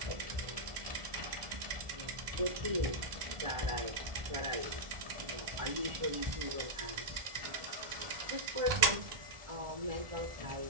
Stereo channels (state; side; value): late; left; 1.4 ms